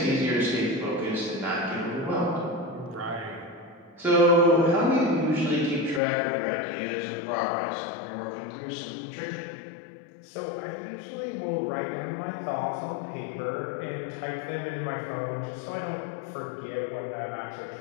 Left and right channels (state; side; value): drops out; right; at 6.0 s